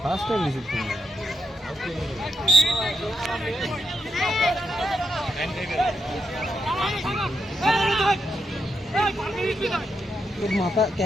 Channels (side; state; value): both; normal; correlation 0.81